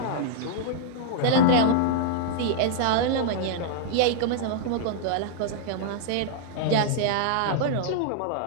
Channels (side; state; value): both; different; correlation -0.01